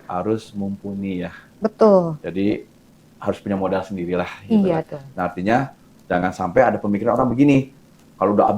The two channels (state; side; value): identical; both; correlation 1.00